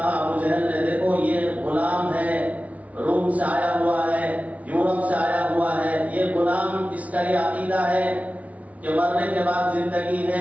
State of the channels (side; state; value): left; late; 0.068 ms